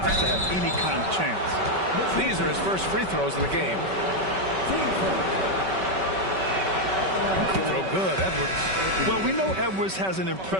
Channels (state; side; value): late; left; 5.2 ms